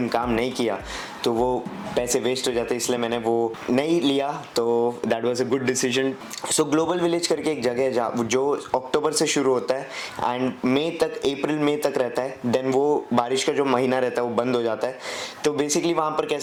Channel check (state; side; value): identical; both; correlation 1.00